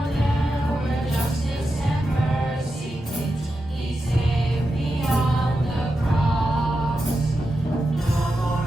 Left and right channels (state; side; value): normal; both; correlation 0.89